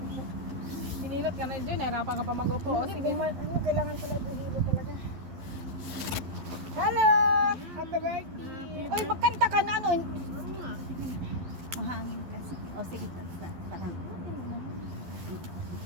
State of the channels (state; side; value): late; left; 11 ms